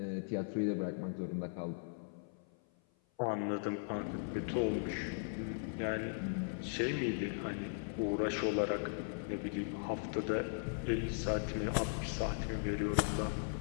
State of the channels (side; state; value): right; silent; 52 dB below the other